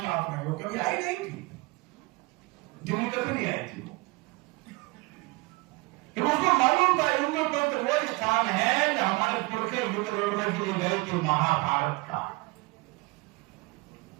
साथ में, वो कभी आई नहीं थी, दिल्ली कभी नहीं आई थी। तो उसको मालूम था इंद्रप्रस्थ वो स्थान है जो हमारे पुरखे युद्ध लड़ने के लिए गए थे महाभारत का।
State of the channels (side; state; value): left; quieter; 24.9 dB